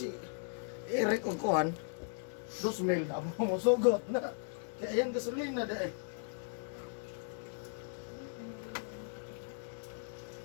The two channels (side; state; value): right; silent; digital silence